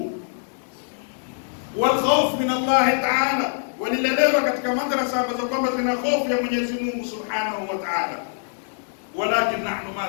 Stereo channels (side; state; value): right; silent; digital silence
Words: Wal khawf min Allah ta'ala, walilelewa katika madrasa ambazo kwamba zina hofu ya Mwenyezi Mungu Subhanahu wa Ta'ala. Walakin nahnu